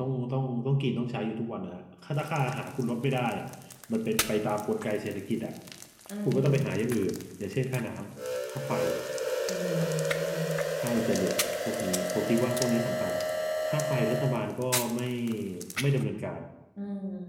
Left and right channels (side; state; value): both; identical; correlation 1.00